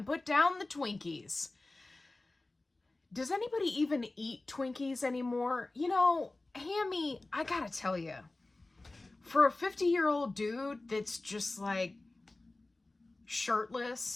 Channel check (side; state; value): right; quieter; 3.0 dB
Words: put down the Twinkies. Does anybody even eat Twinkies anymore? You know, Hammy, I gotta tell you, for a 50-year-old dude that's just like